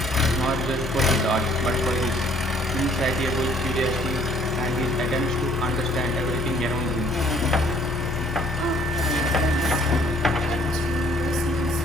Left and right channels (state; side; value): normal; both; correlation 0.60